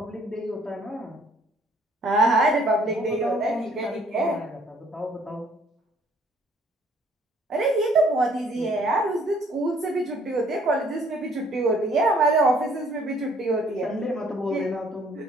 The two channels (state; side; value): normal; both; correlation 0.61